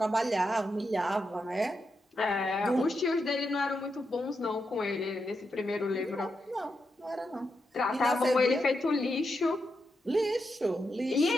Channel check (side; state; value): both; normal; correlation 0.85